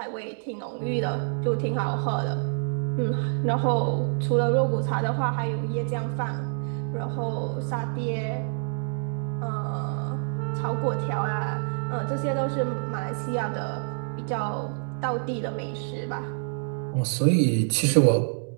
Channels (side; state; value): left; silent; digital silence